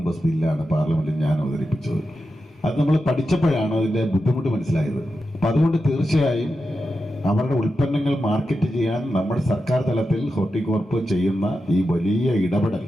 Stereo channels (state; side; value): normal; both; correlation 0.89